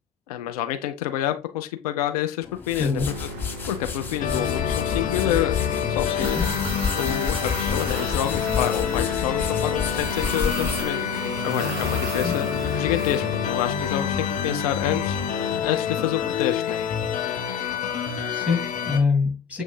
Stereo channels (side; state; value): right; quieter; 7.3 dB